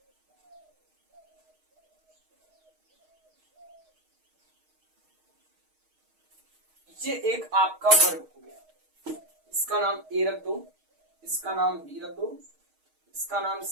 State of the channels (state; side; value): late; left; 6.4 ms